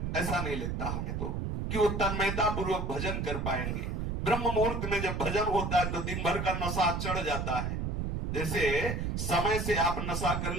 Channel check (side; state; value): right; noise; rumble, 2 dB below the sound